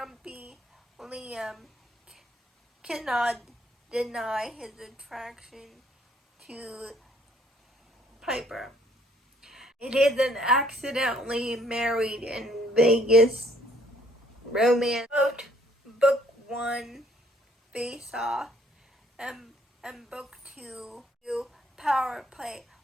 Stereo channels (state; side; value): normal; both; correlation 0.64